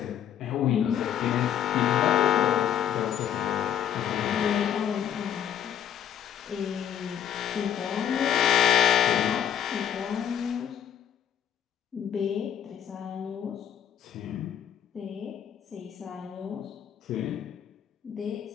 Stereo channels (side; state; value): right; quieter; 9.3 dB